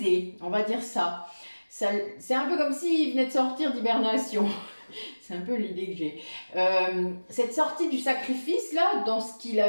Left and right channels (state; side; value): inverted; both; correlation -1.00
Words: on va dire ça. C'est un peu comme s'il venait de sortir d'hibernation. C'est un peu l'idée que j'ai. Cette sortie du sacrifice, là, dans ce qu'il